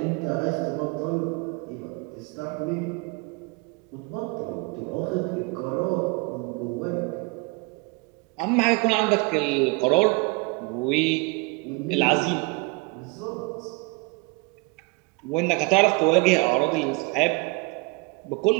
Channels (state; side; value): quieter; left; 27.6 dB